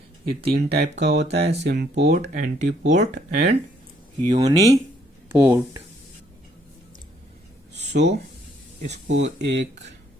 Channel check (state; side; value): normal; both; correlation 0.67